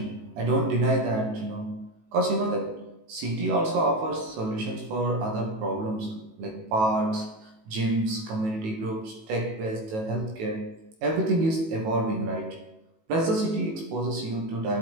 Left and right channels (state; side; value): late; left; 18 ms